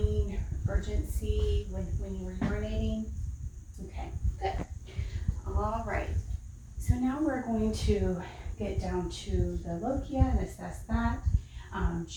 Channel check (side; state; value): both; identical; correlation 1.00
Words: urgency when you were urinating? Okay, good. All right. So now we're going to get down to the lochia and assess that.